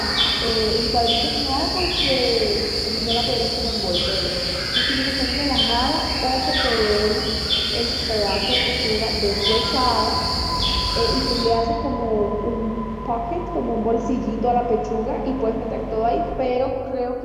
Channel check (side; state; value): both; identical; correlation 1.00